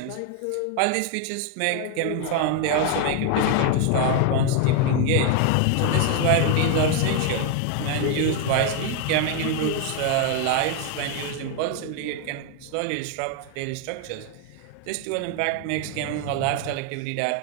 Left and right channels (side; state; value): both; different; correlation 0.01